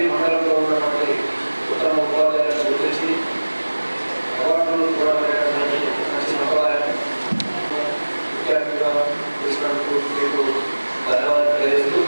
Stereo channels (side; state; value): both; inverted; correlation -1.00